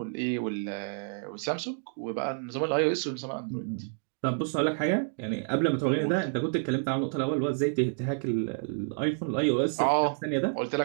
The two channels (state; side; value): silent; left; 58 dB below the other